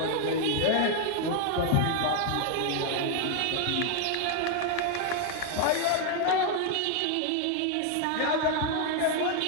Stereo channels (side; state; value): both; different; correlation 0.00